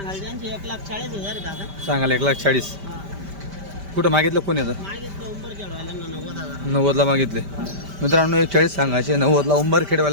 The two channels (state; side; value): late; left; 5.1 ms